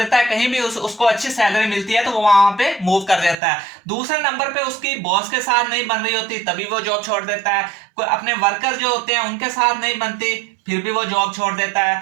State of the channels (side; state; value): left; drops out; at 3.4 s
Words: है। कहीं भी उसको अच्छी सैलरी मिलती है तो वो वहां पे मूव कर देता है। दूसरे नंबर पे उसकी बॉस के साथ नहीं बन रही होती तभी वो जॉब छोड़ देता है। कोई अपने वर्कर जो होते हैं उनके साथ नहीं बनती फिर भी वो जॉब छोड़ देता है।